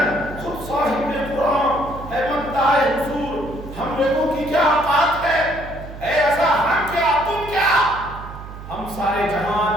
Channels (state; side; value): noise; right; hum, 13 dB below the sound